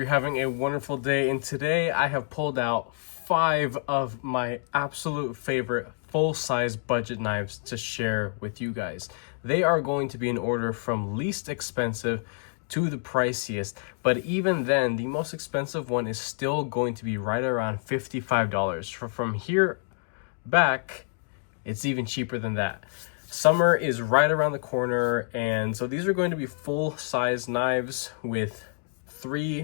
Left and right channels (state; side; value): silent; right; 57 dB below the other